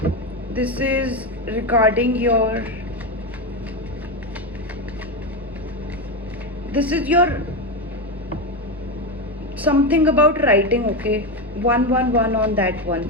this is regarding your, this is your something about writing. Okay, 111 on that one,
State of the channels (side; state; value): both; normal; correlation 0.13